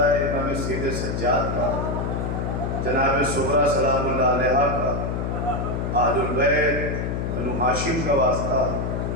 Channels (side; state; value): left; noise; hum, 2 dB below the sound